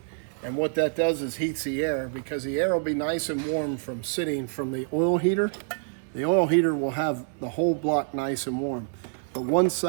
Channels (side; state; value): left; silent; digital silence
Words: And what that does is heats the air, because the air will be nice and warm from sitting from the oil heater. The oil heater will have the whole block nice and warm. But once